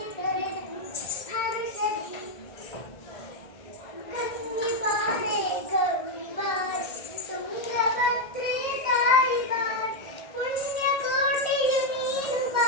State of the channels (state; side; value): late; right; 1.7 ms